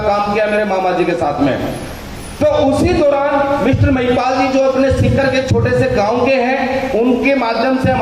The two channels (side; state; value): both; identical; correlation 1.00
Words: किया मेरे मामा जी के साथ में। तो उसी दौरान मिस्टर महिपाल जी जो अपने सीकर के छोटे से गांव के हैं, उनके माध्यम से